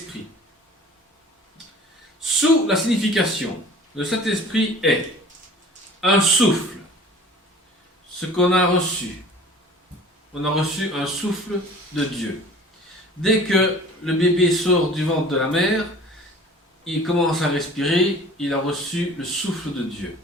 ». Sous la signification, le Saint-Esprit est un souffle, ce qu'on a reçu. On a reçu un souffle de Dieu. Dès que le bébé sort du ventre de la mère, il commence à respirer, il a reçu le souffle de Dieu.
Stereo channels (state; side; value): normal; both; correlation 0.45